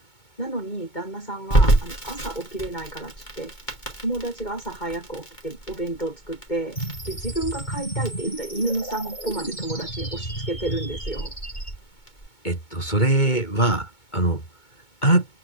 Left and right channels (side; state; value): right; late; 2.2 ms